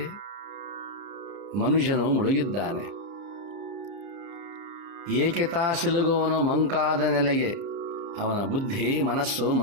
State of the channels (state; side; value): late; left; 30 ms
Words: ಮನುಷ್ಯನು ಮುಳುಗಿದ್ದಾನೆ. ಏಕೆ ತಾ ಸಿಲುಗುವನು ಮಂಕಾದ ನೆಲೆಗೆ. ಅವನ ಬುದ್ಧಿ ಮನಸ್ಸು